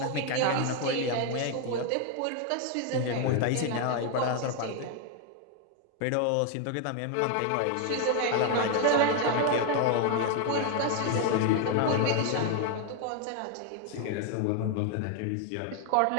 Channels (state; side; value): different; both; correlation 0.01